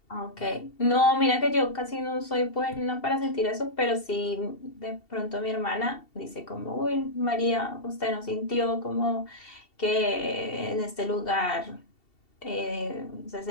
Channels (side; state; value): right; late; 2.7 ms